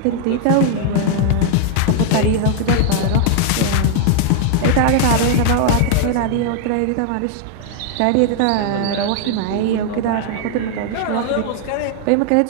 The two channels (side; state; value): both; different; correlation -0.01